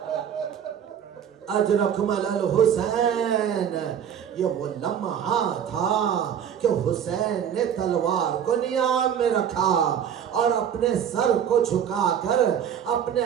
اجرکمل الحسین. یہ وہ لمحہ تھا کہ حسین نے تلوار کو نیام میں رکھا اور اپنے سر کو جھکا کر اپنے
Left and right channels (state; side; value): quieter; left; 8.7 dB